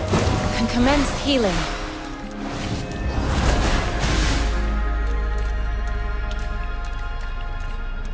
Can commence healing.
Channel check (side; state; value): both; identical; correlation 1.00